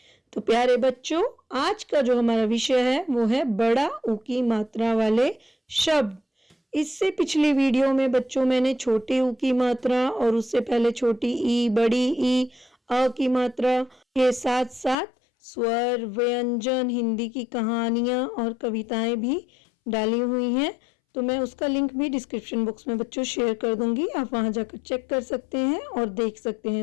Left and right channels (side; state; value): right; drops out; at 15.0 s